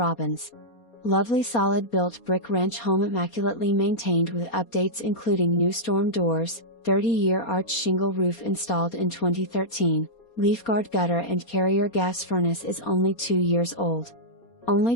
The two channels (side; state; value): right; late; 4.3 ms